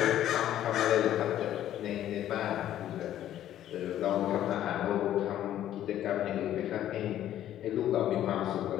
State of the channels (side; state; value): right; quieter; 12.0 dB